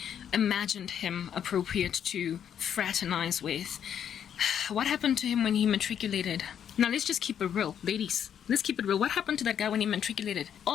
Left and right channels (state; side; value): quieter; right; 8.9 dB